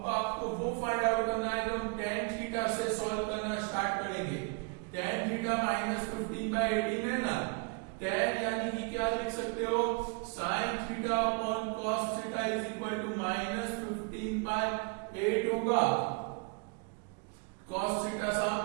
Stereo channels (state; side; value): quieter; left; 33.8 dB